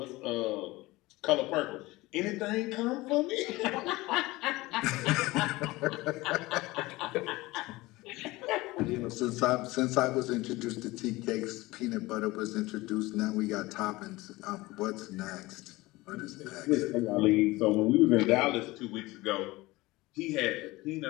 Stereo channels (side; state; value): right; quieter; 20.3 dB